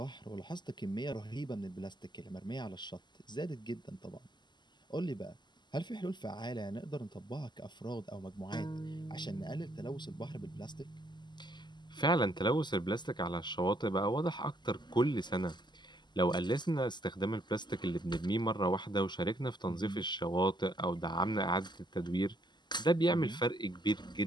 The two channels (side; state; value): right; late; 0.21 ms